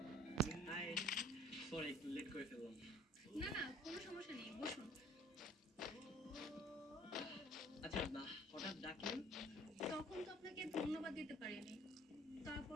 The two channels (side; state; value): both; normal; correlation 0.53